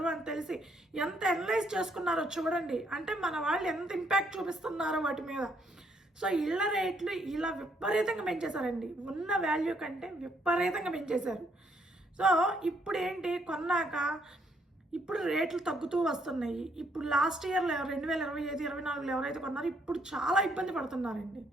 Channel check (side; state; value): both; normal; correlation 0.71